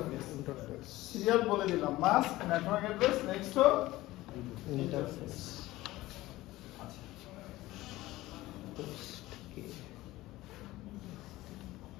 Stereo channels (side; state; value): right; quieter; 17.6 dB